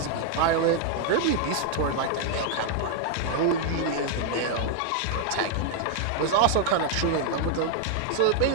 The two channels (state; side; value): different; both; correlation 0.00